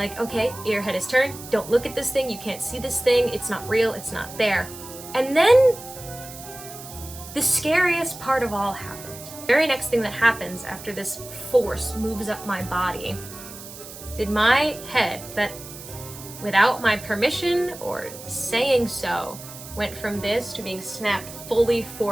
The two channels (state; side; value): noise; right; hiss, 14 dB below the sound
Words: okay, your head is turned, don't look at this thing, you can't see this thing, it's not real, it's not there. And then the scariest part of all happened. The very next thing that happens after this force moves up my body, did my head, that without my permission or saying so, went from this to being snapped fully